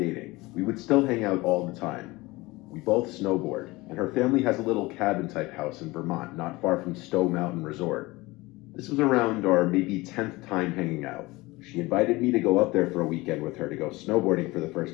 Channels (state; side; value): quieter; right; 21.5 dB